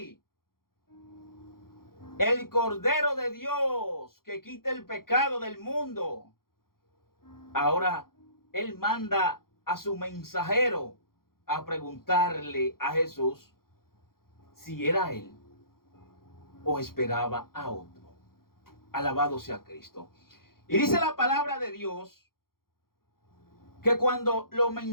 el Cordero de Dios que quita el pecado del mundo. Ahora él manda a su mensajero a preguntarle a Jesús si era él o esperaba a otro. Alabado sea Cristo. Y dice la palabra de Dios que cuando los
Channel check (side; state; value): right; late; 0.93 ms